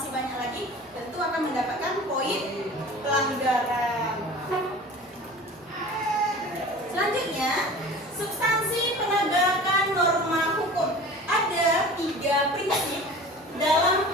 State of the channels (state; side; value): normal; both; correlation 0.40